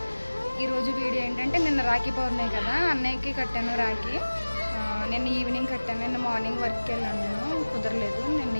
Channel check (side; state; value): both; inverted; correlation -1.00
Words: ఈరోజు వీడియో ఏంటంటే, నిన్న రాఖీ పౌర్ణమి కదా, అన్నయ్యకి కట్టాను రాఖీ. నిన్న ఈవినింగ్ కట్టాను. నిన్న మార్నింగ్ వర్క్కి వెళ్ళాను, నేను కుదరలేదు. నిన్న